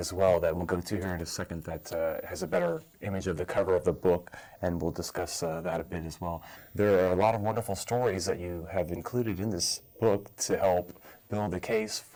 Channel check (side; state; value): both; identical; correlation 1.00